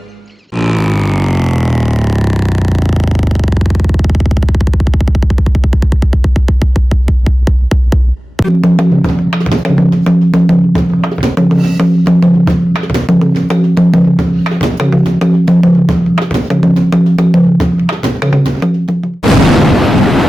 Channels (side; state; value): both; normal; correlation 0.96